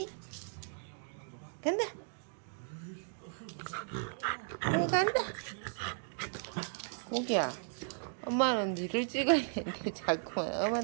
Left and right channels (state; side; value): silent; left; digital silence